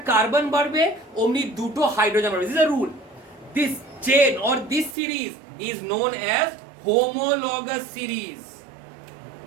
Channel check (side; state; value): left; drops out; at 5.0 s